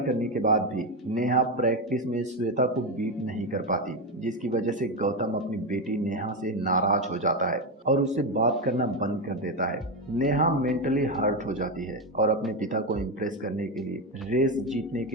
करने के बाद भी नेहा प्रैक्टिस में श्वेता को बीट नहीं कर पाती, जिसकी वजह से गौतम अपनी बेटी नेहा से नाराज हो जाता है और उससे बात करना बंद कर देता है। नेहा मेंटली हर्ट हो जाती है और अपने पिता को इम्प्रेस करने के लिए रेस जीतने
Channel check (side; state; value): both; normal; correlation 0.11